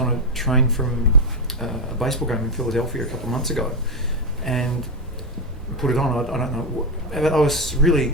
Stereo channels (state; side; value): normal; both; correlation 0.08